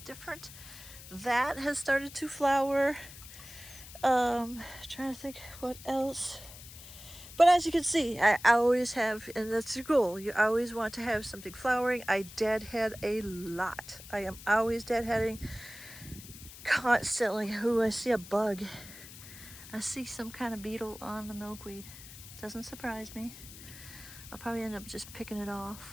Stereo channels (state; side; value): noise; left; hiss, 16 dB below the sound